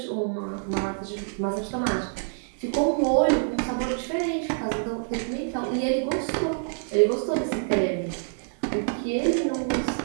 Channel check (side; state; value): left; silent; digital silence